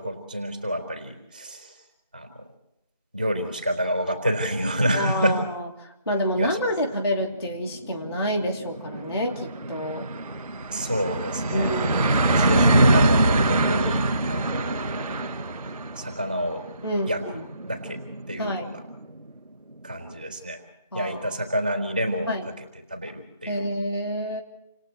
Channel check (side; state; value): both; inverted; correlation -0.69